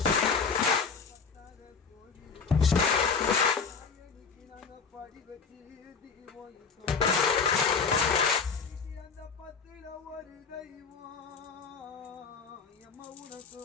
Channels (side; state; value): right; quieter; 5.5 dB